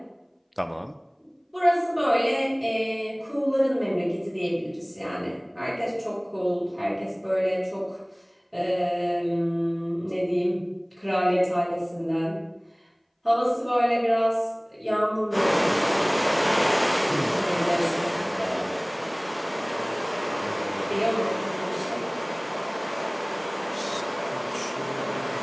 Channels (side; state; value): both; identical; correlation 1.00